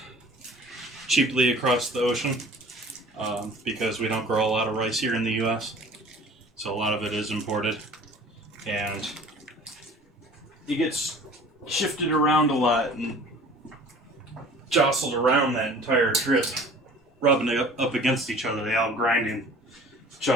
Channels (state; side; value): normal; both; correlation 0.47